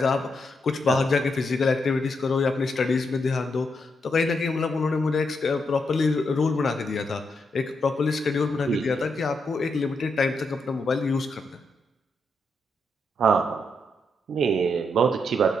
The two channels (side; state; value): both; normal; correlation 0.81